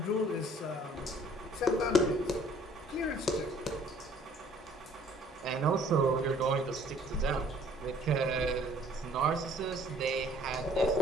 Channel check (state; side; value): normal; both; correlation 0.57